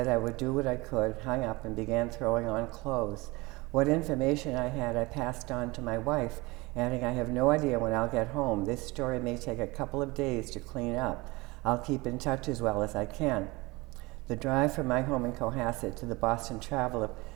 I would do what I could, hung up, and began throwing on clothes. What information I had, I passed on to my wife, adding, "I have no idea when I'll get home. This story may take a couple of days to clean up. I'll keep in touch as well as I can." The drive from my home in Cohasset to the Boston Traveler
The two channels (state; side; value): quieter; left; 23.4 dB